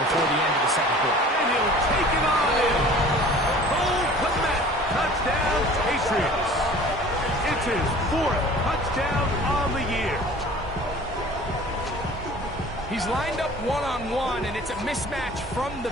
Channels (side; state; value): both; normal; correlation 0.46